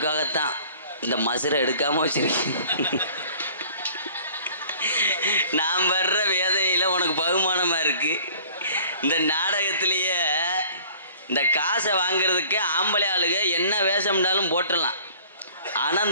இந்த மசுரை எடுக்காமல் வச்சிருக்கேன். நான் வர்ற வேதனையில் உனக்கு பகுமானமாக இருக்குது. இந்த நாடகத்திலேயே இந்த காசை வாங்கிறதுக்கு ஆம்பளை ஆளுங்க என்ன வேஷம்னாலும் போட்டுடலாம். ஆனால்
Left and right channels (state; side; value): inverted; both; correlation -0.51